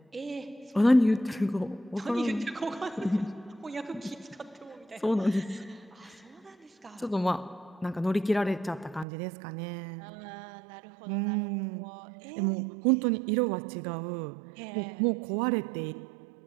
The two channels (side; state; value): left; drops out; at 9.1 s